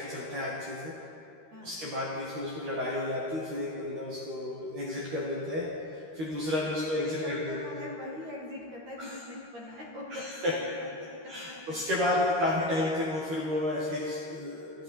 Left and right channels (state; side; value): late; left; 13 ms